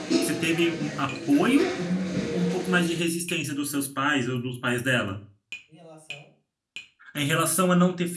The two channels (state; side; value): identical; both; correlation 1.00